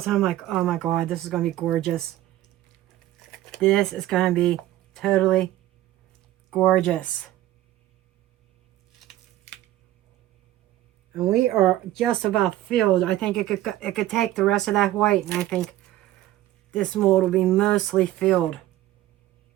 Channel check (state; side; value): quieter; left; 14.7 dB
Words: and I'm like, oh my God, this is going to be gorgeous. This is going to be totally gorgeous. And we are just about filled. I think it could take the rest of that white, and I think this mold will be mostly filled.